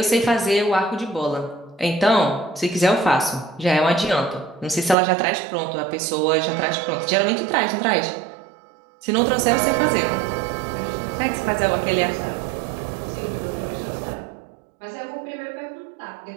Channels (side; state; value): left; drops out; at 5.0 s